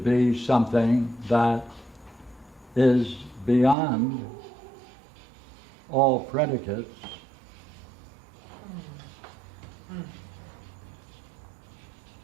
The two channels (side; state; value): left; drops out; at 3.8 s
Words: something that is beyond all predicates,